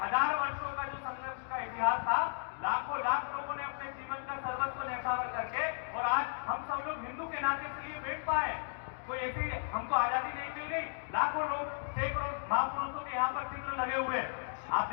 वर्षों का जो संघर्ष का इतिहास था, लाखों लाख लोगों ने अपने जीवन का सर्वस्व न्यौछावर करके, और आज हम सब लोग हिंदू के नाते इसलिए बैठ पाए। कोई ऐसी हमको आजादी नहीं मिल गई। लाखों लोग, सैकड़ों महापुरुषों के यहाँ पर चित्र लगे हुए, आप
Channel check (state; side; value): silent; right; digital silence